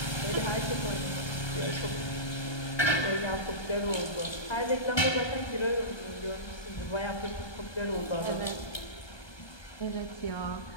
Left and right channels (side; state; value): right; late; 1.2 ms